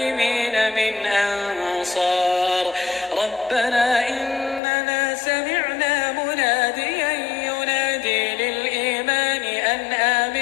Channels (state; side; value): drops out; right; at 4.6 s